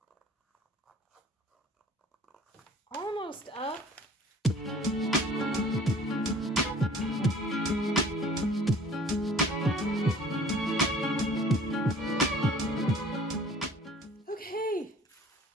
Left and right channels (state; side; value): normal; both; correlation 0.50